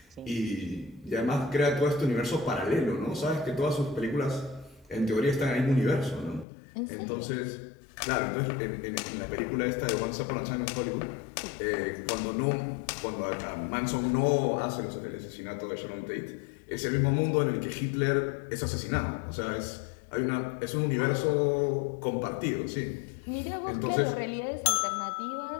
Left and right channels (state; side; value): drops out; right; at 6.5 s